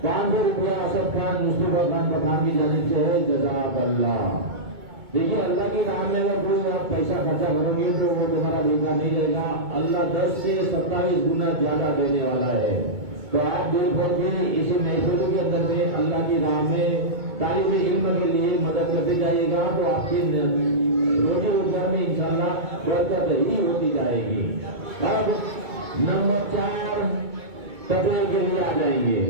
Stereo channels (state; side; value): late; left; 2.2 ms